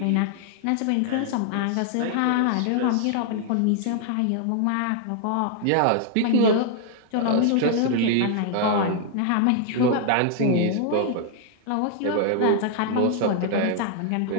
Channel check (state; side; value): different; both; correlation 0.00